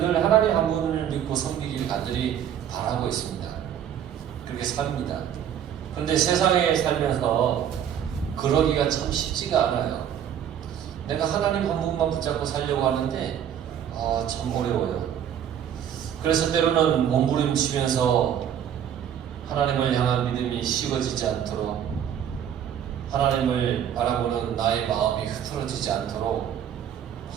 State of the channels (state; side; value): quieter; left; 9.5 dB